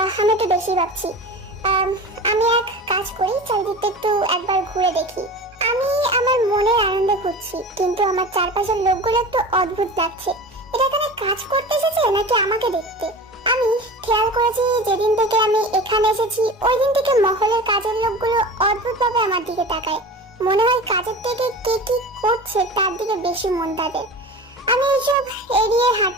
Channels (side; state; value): both; normal; correlation 0.34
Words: আমি একটু বেশি ভাবছি। আমি এক কাজ করি, চারিদিকটা একটু একবার ঘুরে দেখি। আমি আমার মনের আনন্দে ঘুরছি, কিন্তু আমার চারপাশের লোকগুলো একটু অদ্ভুত লাগছে। এটা এখানে কাজ করতে এসেছে নাকি আমাকে দেখতে? আমি খেয়াল করেছি যেদিন থেকে আমি এখানে এসেছি ওই দিন থেকে মহলের কাজের লোকগুলো অদ্ভুতভাবে আমার দিকে তাকায়। মনে হয় কাজের থেকে কে কি করছে তার দিকে বেশি মন তাদের। আমি এইসব এড়িয়ে